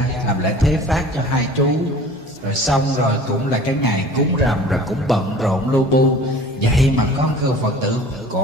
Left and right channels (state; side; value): normal; both; correlation 0.44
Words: làm lễ thế phát cho hai chú, rồi xong rồi cũng là cái ngày cúng rằm, rồi cũng bận rộn lu bu. Vậy mà có một Phật tử